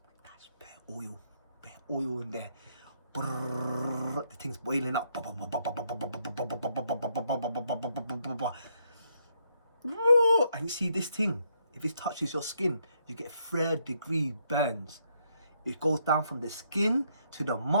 That's bare oil in there. Brrr, the thing's boiling up. And you see this thing, if it touches your skin, you get 3rd-degree burns. It goes down from the skin to the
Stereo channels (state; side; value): inverted; both; correlation -0.74